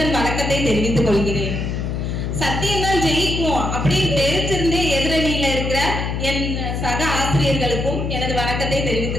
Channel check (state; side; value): noise; left; hum, 2 dB below the sound